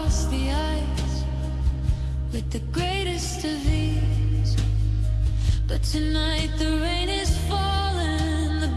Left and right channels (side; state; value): both; identical; correlation 1.00